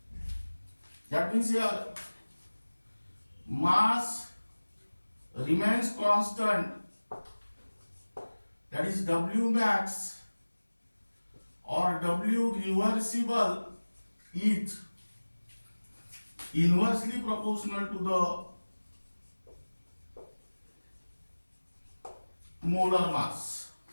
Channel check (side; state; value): both; inverted; correlation -1.00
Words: That means here mass remains constant, that is W max or W reversible is inversely proportional to the molar mass.